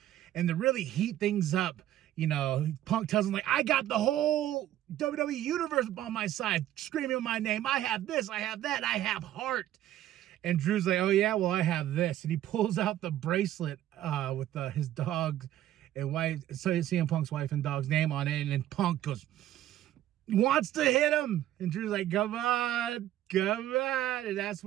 And to really heat things up, you know, Punk tells him, like, I got the whole WWE Universe on my side, screaming my name. I have this, I have that, I have heart. And Drew's like, oh, yeah, well, I have this. And he pulls out the bracelet with his dog and wife, so CM Punk's wife and dog's name on it. And then Punk wants to hit him. And Drew's like, come on. And that's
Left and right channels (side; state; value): left; quieter; 12.9 dB